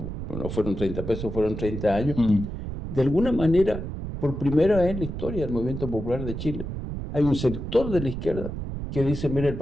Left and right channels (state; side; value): noise; right; rumble, 6 dB below the sound